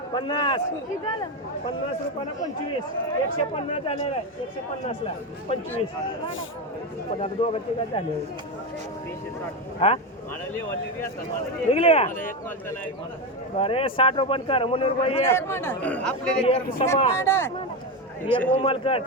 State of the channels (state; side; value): normal; both; correlation 0.14